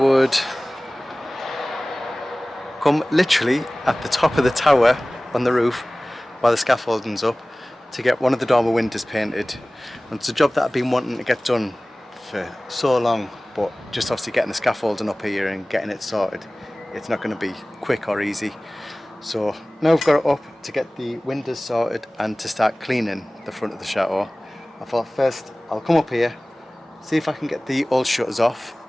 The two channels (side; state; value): both; normal; correlation 0.98